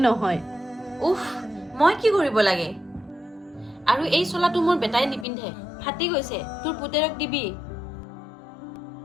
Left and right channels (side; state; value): right; drops out; at 5.2 s